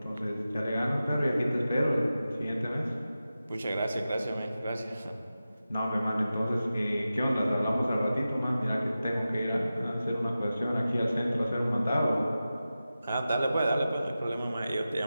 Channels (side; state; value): both; inverted; correlation -0.93